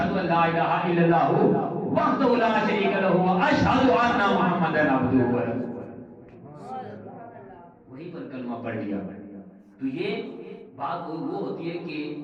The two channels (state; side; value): identical; both; correlation 1.00